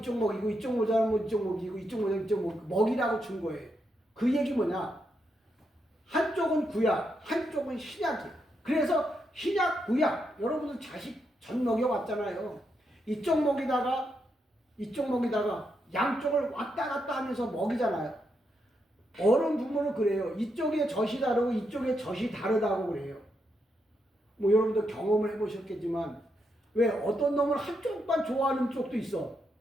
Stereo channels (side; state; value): both; normal; correlation 0.82